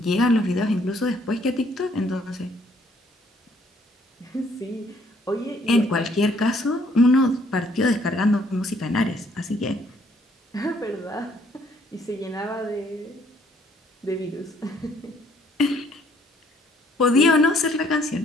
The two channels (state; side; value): normal; both; correlation 0.65